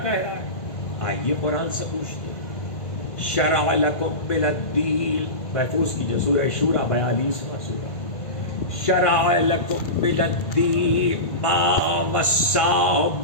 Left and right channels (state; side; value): late; right; 1.5 ms